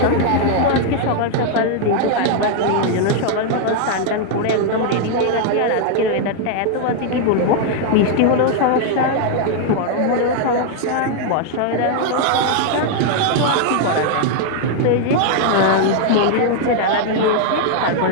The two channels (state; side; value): different; both; correlation 0.00